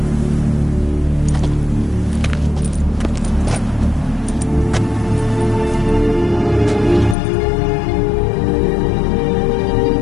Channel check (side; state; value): right; drops out; at 7.2 s